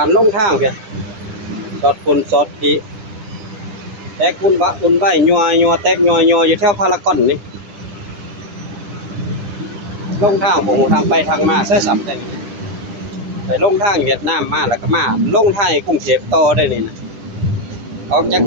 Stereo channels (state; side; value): late; left; 10 ms